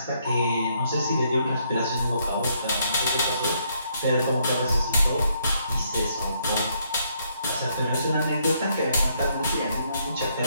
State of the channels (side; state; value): both; inverted; correlation -0.72